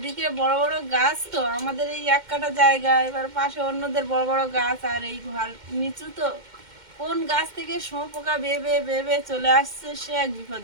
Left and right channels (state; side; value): late; left; 2.1 ms